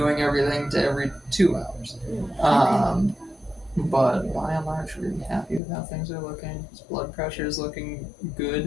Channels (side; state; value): right; drops out; at 5.6 s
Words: everything to every 2 hours. But by and large, really happy with how things are looking. His blood pressure is looking